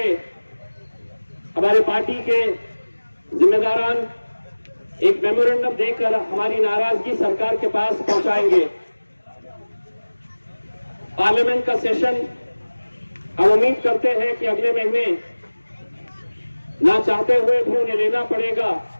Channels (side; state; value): both; inverted; correlation -1.00